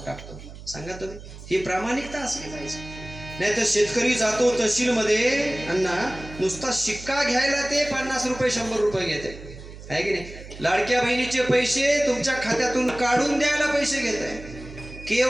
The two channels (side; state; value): right; noise; hum, 15 dB below the sound